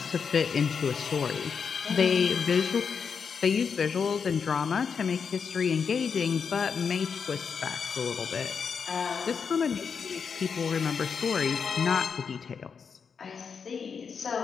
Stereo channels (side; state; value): right; quieter; 6.2 dB